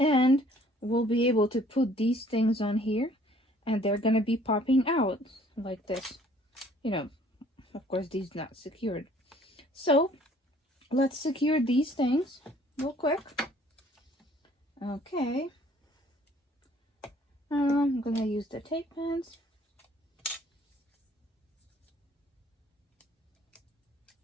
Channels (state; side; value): normal; both; correlation 0.58